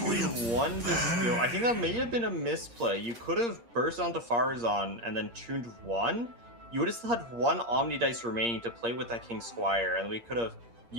one dispute. I think that may have been a misplay. You could have burst onto Farazan and then tuned 1. You would have still had 1 Omni dice remaining to play with that King Squire, and we could have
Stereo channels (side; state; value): left; late; 8.6 ms